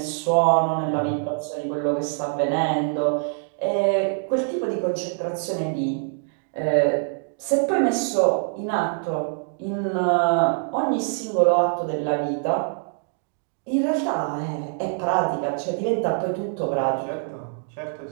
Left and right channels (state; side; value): silent; left; 62 dB below the other